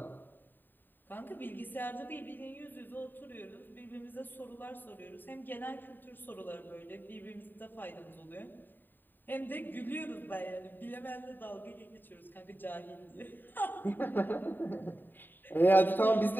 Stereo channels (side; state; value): right; late; 0.092 ms